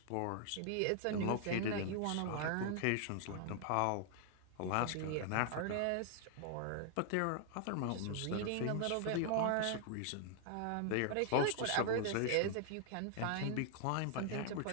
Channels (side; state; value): both; different; correlation 0.00